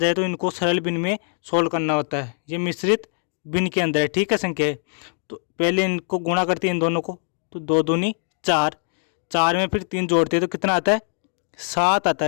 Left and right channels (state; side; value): silent; right; 62 dB below the other